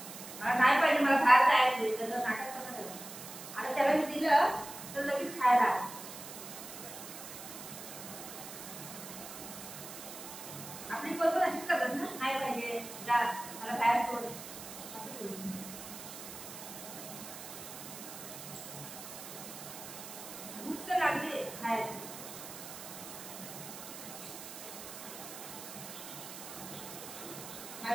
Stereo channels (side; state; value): right; noise; hiss, 11 dB below the sound